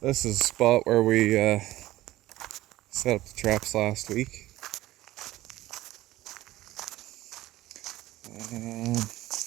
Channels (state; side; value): quieter; left; 16.2 dB